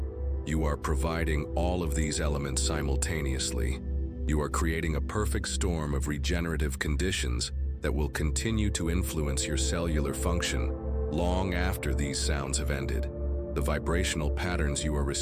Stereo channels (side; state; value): both; identical; correlation 1.00